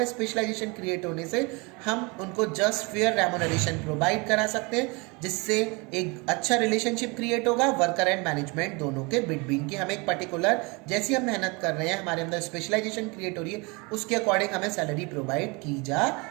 स्पेशलाइजेशन क्रिएट होने से हम उनको जस्ट फेयर रेमुनरेशन प्रोवाइड करा सकते हैं, जिससे एक अच्छा रिलेशनशिप क्रिएट होगा वर्कर एंड मैनेजमेंट दोनों के बिटवीन की। हम एक पर्टिकुलर, जैसी हम मेहनत कर रहे हैं, हमारे अंदर स्पेशलाइजेशन क्रिएट हो रही है, उसके अकॉर्डिंग हमें सैलरी प्रोवाइड की जा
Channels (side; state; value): left; quieter; 27.9 dB